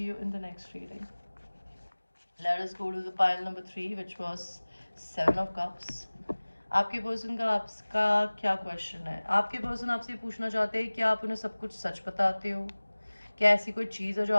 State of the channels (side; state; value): both; inverted; correlation -1.00